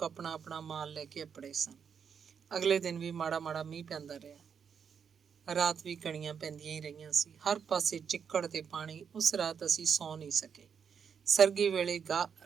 ਆਪਣਾ ਆਪਣਾ ਮਾਲ ਲੈ ਕੇ ਅੱਪੜੇ ਸਨ। ਅਗਲੇ ਦਿਨ ਵੀ ਮਾੜਾ ਮਾੜਾ ਮੀਂਹ ਪੈਂਦਾ ਰਿਹਾ। ਰਾਤ ਵੀ ਕਣੀਆਂ ਪੈਂਦੀਆਂ ਹੀ ਰਹੀਆਂ ਸੀ। ਹਰ ਪਾਸੇ ਚਿੱਕੜ ਤੇ ਪਾਣੀ। ਉਸ ਰਾਤ ਅਸੀਂ ਸੌਂ ਨਹੀਂ ਸਕੇ। ਸਰਗੀ ਵੇਲੇ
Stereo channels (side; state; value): left; quieter; 7.0 dB